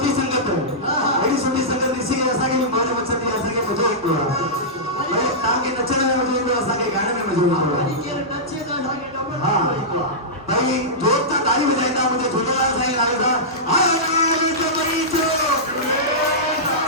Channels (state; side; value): normal; both; correlation -0.13